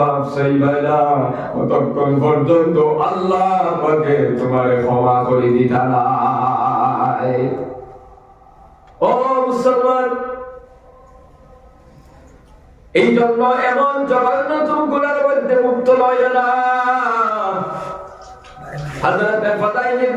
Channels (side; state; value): both; identical; correlation 1.00